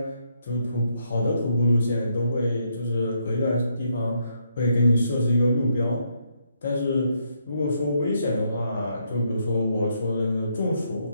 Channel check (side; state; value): both; inverted; correlation -0.76